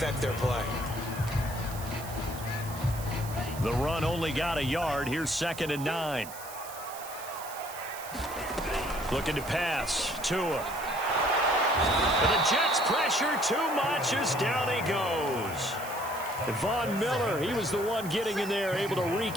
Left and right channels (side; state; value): right; noise; hiss, 14 dB below the sound